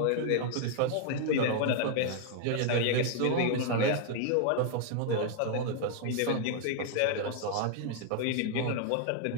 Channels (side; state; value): both; different; correlation 0.00